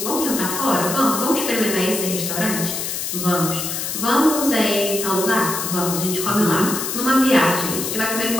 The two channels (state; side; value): noise; left; hiss, 3 dB below the sound